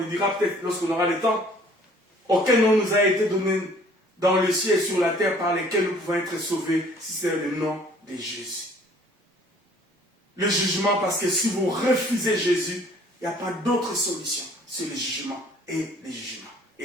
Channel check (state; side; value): normal; both; correlation 0.55